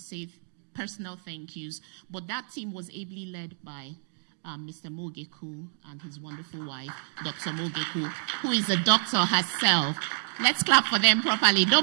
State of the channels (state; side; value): silent; left; digital silence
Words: personal thank yous, but that team was ably led by Mr. Mogeku and his wonderful wife, Dr. Mogeku, who is a doctor herself. Let's clap for them properly.